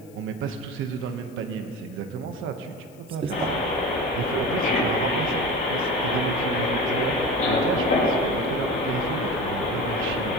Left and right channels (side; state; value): left; noise; hiss, 28 dB below the sound